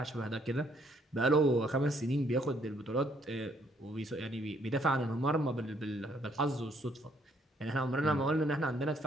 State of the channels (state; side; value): normal; both; correlation 0.68